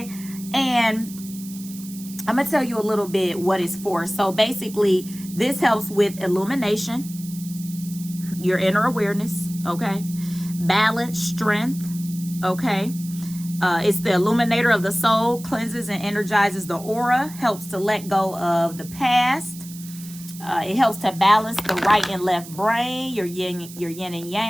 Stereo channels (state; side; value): noise; right; hiss, 16 dB below the sound